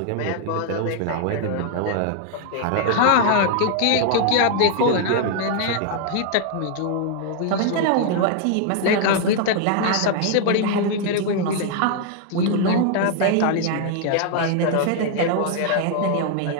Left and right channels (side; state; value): both; different; correlation 0.00